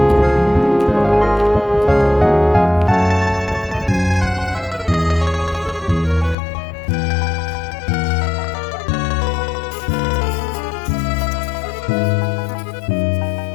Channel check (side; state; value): right; drops out; at 6.4 s